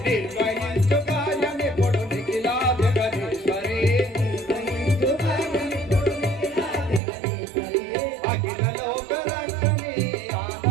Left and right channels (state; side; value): drops out; left; at 7.0 s